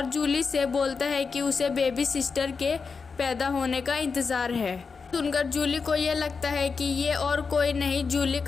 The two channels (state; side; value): quieter; right; 5.1 dB